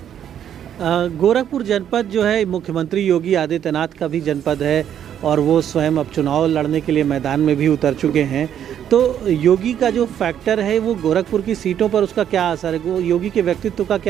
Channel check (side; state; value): left; quieter; 9.7 dB